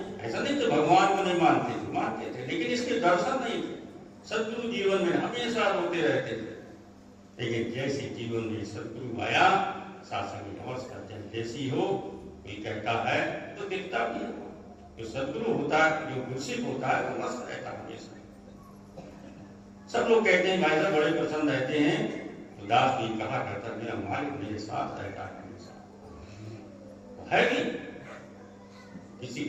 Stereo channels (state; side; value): identical; both; correlation 1.00